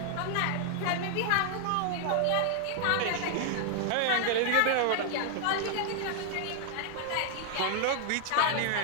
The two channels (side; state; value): both; different; correlation 0.00